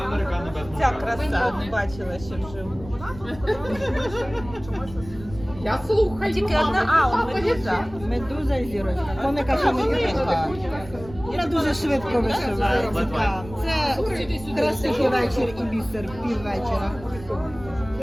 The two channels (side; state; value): right; noise; rumble, 15 dB below the sound